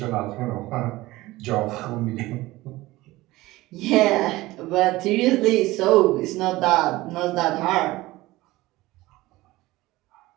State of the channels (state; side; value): quieter; left; 18.8 dB